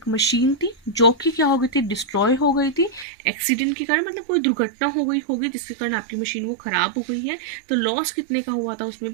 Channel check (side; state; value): left; drops out; at 3.1 s